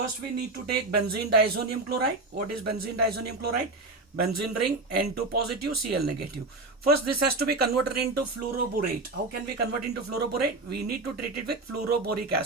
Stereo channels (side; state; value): left; quieter; 3.2 dB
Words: we need to take benzene diazonium chloride. What is benzene diazonium chloride? Benzene ring, N2 positive, Cl negative. First, this has to be converted into fluoroborate. How can we convert into fluoroborate? We need to treat it with fluoroboric